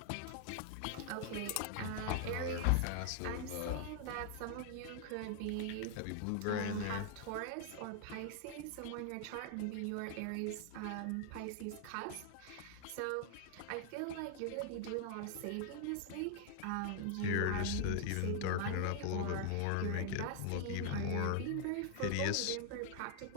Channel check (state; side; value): different; both; correlation 0.00